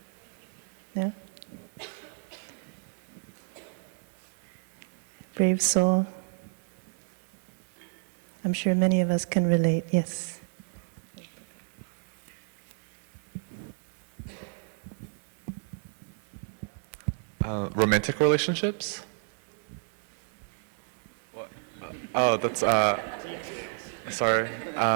No? Brave soul. I'm sure many of us can relate, yes. Romantic relationships? What? Oh, that's, sorry.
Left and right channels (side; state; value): left; silent; 57 dB below the other